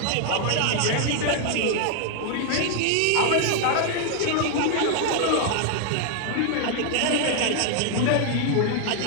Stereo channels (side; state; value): both; different; correlation 0.00